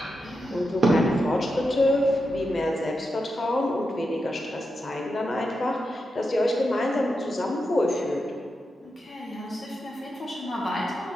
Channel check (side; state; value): both; normal; correlation 0.87